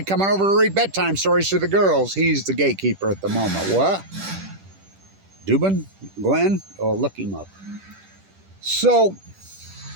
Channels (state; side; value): late; left; 10 ms